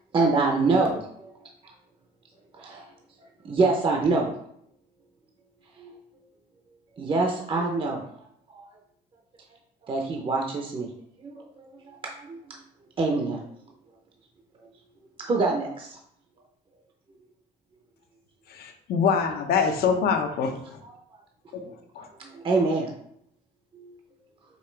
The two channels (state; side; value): normal; both; correlation 0.46